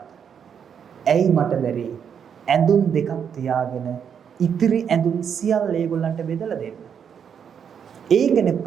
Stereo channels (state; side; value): quieter; left; 7.6 dB